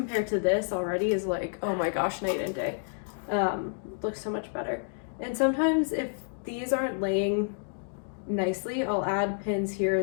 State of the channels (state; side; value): silent; right; digital silence